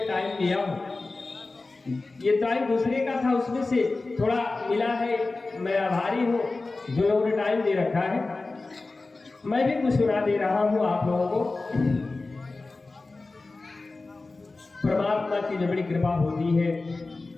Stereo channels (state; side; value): quieter; right; 3.5 dB